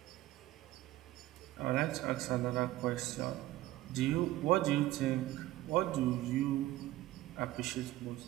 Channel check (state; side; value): quieter; left; 15.9 dB